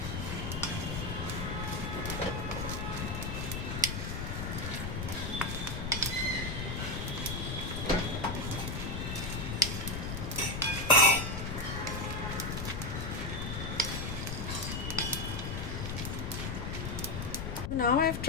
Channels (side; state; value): left; noise; rumble, 3 dB below the sound